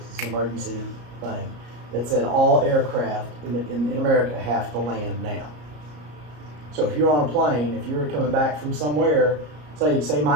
It's an emergency thing that said all aircraft in America have to land now. So if you're on a plane, if you're coming back from somewhere, say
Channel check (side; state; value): left; late; 34 ms